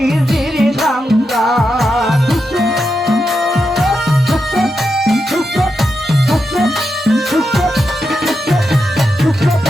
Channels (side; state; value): both; normal; correlation 0.86